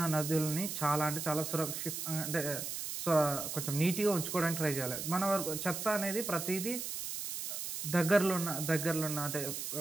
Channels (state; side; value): noise; right; hiss, 5 dB below the sound